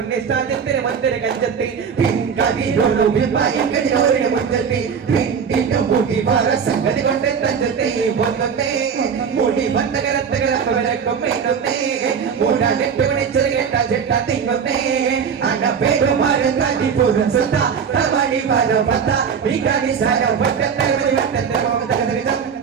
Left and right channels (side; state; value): left; quieter; 6.8 dB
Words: സാജത്തിര മന്ദിര കഞ്ചത്തെ പിൻകതിരൊരു വിഭയം കതിരോരുടെ മുറ്റത്തെ പിന്നിന്റെ മുടി വര സംഗതി കൊണ്ട് തഞ്ചത്തെ പൊന്നത്തെ മുടി വന്നകരത്തകരക്കും മേന്നത്തെ മൂടാനെട്ട് മണിച്ചത് കേട്ട ചെട്ട തിങ്ങുന്നേ അന പേരുമാരൻ തടി പൂരം സുത്ത തമണി വര പത്ത വികാരി സാര വട്ടത്തെ വട്ടത്തെ